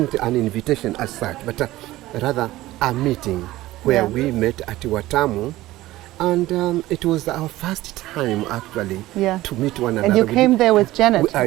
an invitation as such, but rather a meeting where we met at Watamu. And it was our first time, actually, to meet one another. And you came there with Janet, I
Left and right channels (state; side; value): quieter; left; 16.8 dB